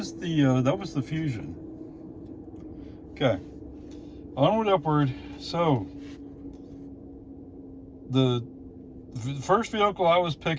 the Fusion. Okay. Onward, upward. So the first vehicle I was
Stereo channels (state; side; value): identical; both; correlation 1.00